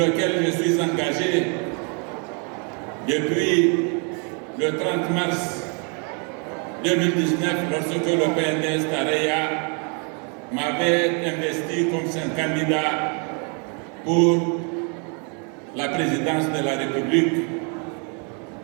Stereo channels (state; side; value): quieter; left; 37.6 dB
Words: je suis engagé depuis le 30 mars 2019, lorsque le PNDS Tareya m'avait investi comme son candidat pour la présidence de la République